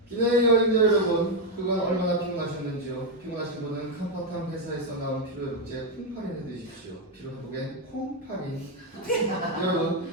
기내 여행자 여러분, 그간 얼마나 피곤하셨는지요? 피곤하신 분은 컴포탐 회사에서 나온 피로회복제 콩파린을 드십시오. 피로회복엔 콩파린. 여러분,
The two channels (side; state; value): both; normal; correlation 0.04